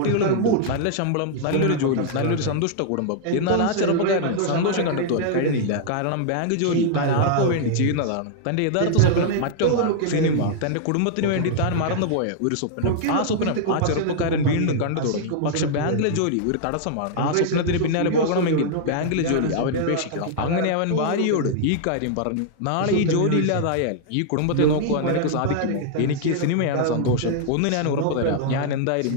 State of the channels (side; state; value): both; different; correlation -0.01